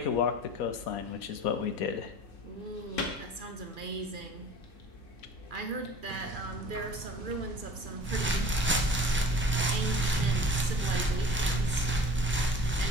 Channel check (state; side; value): normal; both; correlation 0.44